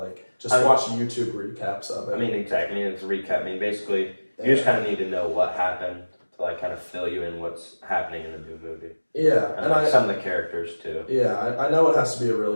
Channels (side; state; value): both; inverted; correlation -1.00